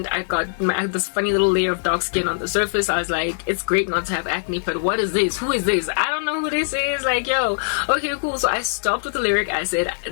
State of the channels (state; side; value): silent; right; digital silence